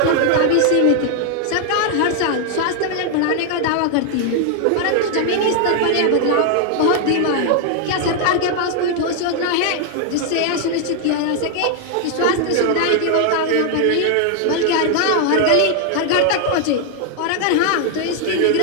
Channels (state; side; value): different; both; correlation 0.00